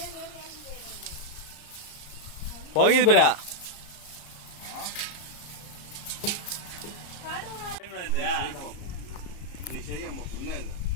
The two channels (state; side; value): late; right; 34 ms